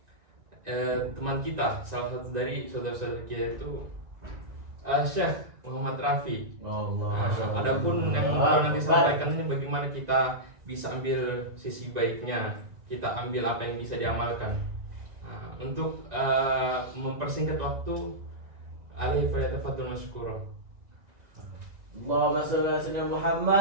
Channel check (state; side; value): late; left; 2.0 ms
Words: teman kita, salah satu dari saudara-saudara kita itu Syekh Muhammad Rafi. Adapun yang beliau nanti sampaikan ini bagaimana kita bisa ambil sisi baiknya, kita ambil apa yang bisa diamalkan. Untuk mempersingkat waktu, alaihi falyatafaddal masykura. Allahumma shalli ala sayyidina